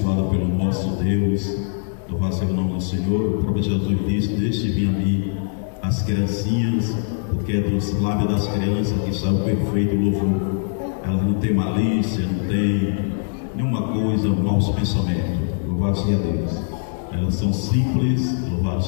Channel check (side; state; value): right; silent; digital silence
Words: pelo nosso Deus. Louvado seja o nome do Senhor. O próprio Jesus disse: deixe vir a mim as criancinhas, porque é dos lábios das crianças que sai o perfeito louvor. Elas não têm malícia, não têm nenhuma coisa, maus pensamentos. Louvado seja Deus. Elas são simples, louvado